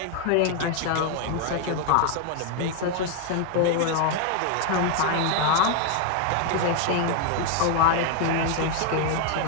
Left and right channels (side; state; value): both; different; correlation 0.00